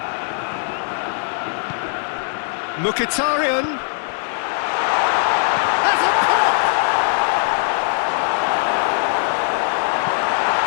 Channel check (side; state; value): right; silent; 63 dB below the other